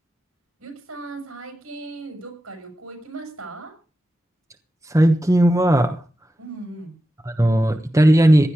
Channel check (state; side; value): normal; both; correlation 0.92